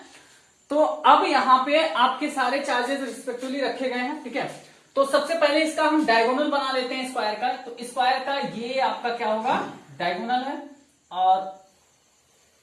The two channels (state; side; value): identical; both; correlation 1.00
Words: तो अब यहां पे आपके सारे चार्जेस रिस्पेक्टिवली रखे गए हैं। ठीक है, तो सबसे पहले इसका हम डायगोनल बना लेते हैं स्क्वायर का। तो स्क्वायर का ये आपका क्या होगा? डायगोनल है और